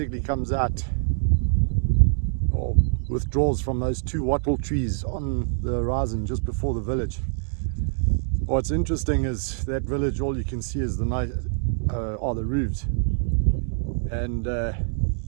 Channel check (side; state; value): left; silent; digital silence